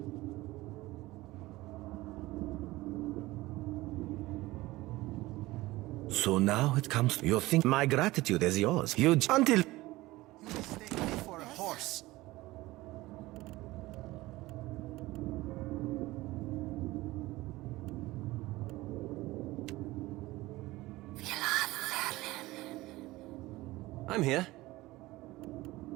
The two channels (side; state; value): left; quieter; 19.0 dB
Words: So now it comes to you think my gratitude is yours. Until You mistake me for a horse. I'm here.